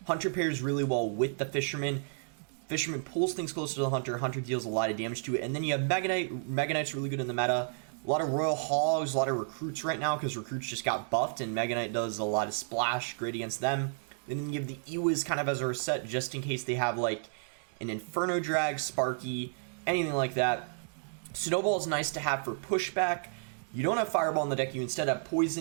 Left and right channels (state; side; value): silent; left; digital silence